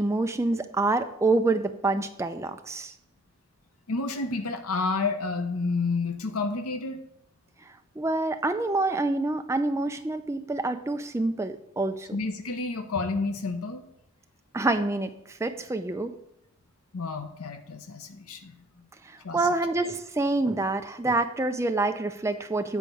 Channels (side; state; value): both; normal; correlation 0.60